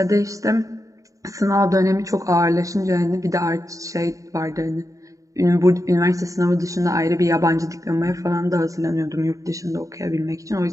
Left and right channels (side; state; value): left; late; 0.16 ms